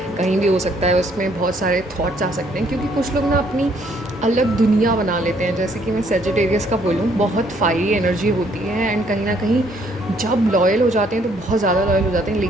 कहीं भी हो सकता है, उसमें बहुत सारे थॉट्स आ सकते हैं, क्योंकि कुछ लोग ना अपनी अलग दुनिया बना लेते हैं। जैसे कि मैं सेजिटेरियस का बोलूँ, बहुत फायरी एनर्जी होती है, एंड कहीं ना कहीं जब लॉयल हो जाते हैं तो बहुत ज़्यादा लॉयल हो जाते हैं,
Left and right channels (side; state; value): both; normal; correlation 0.66